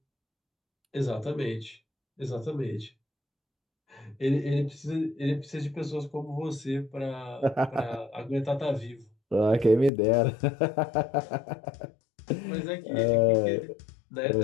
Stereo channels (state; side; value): drops out; right; at 9.9 s